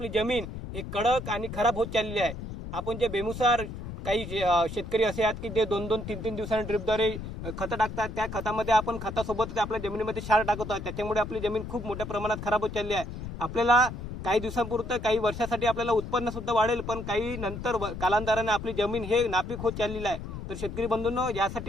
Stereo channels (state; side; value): noise; left; rumble, 8 dB below the sound